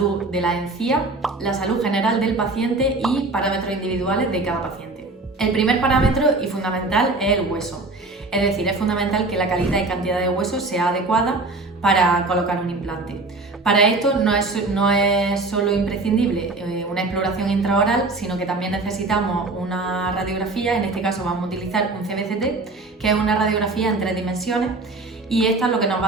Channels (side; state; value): left; quieter; 3.3 dB